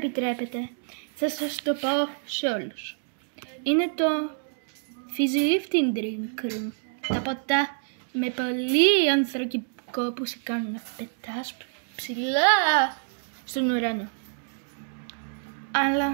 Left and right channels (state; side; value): silent; left; digital silence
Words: Θα σας το πω σε όλους. Είναι το Fizzy Lifting Drink Room. Τα ποτά με πολύ ανθρακικό που σε κάνουν να πετάς ψηλά στον ουρανό.